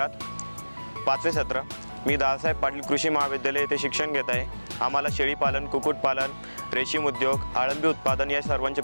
5वे सत्र. मी दादासाहेब पाटील कृषी महाविद्यालय येथे शिक्षण घेत आहे. आम्हाला शेळीपालन, कुक्कुटपालन, रेशीम उद्योग, अळंबी उत्पादन या सर्वांचे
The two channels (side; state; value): both; inverted; correlation -1.00